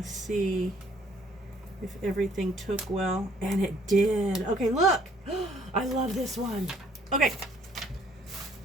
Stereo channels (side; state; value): both; normal; correlation 0.62